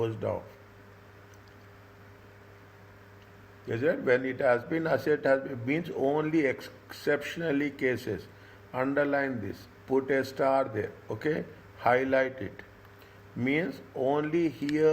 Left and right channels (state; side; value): identical; both; correlation 1.00